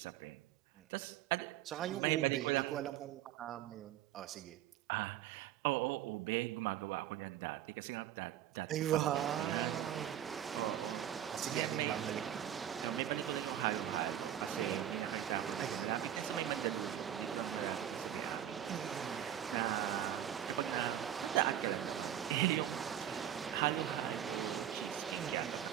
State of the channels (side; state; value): left; quieter; 10.9 dB